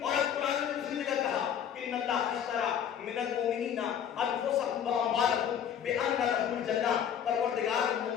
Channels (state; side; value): quieter; right; 8.8 dB